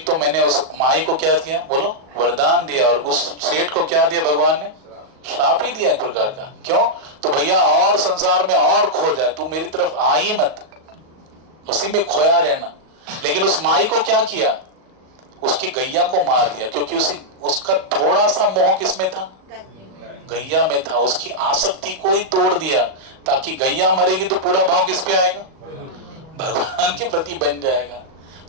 तो मैंने उस माई को क्या दिया, बोलो वरदान दिया, और उस सेठ को क्या दिया भगवान ने, श्राप ही दिया एक प्रकार का। क्यों, तो भैया और संसार में और खो जाए, तू मेरी तरफ आ ही मत, उसी में खोया रहना। लेकिन उस माई को क्या किया, उसकी गैया को मार दिया, क्योंकि उसका थोड़ा सा मोह किसमें था, गैया में था। उसकी आसक्ति को ही तोड़ दिया, ताकि गैया मरेगी तो पूरा भाव किस पे आएगा, भगवान के प्रति बन जाएगा।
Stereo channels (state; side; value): late; left; 38 ms